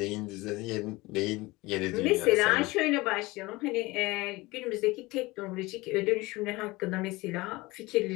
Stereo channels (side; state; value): right; quieter; 21.8 dB